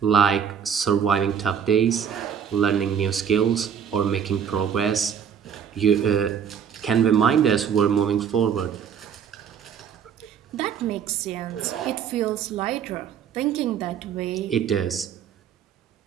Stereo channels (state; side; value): quieter; left; 7.9 dB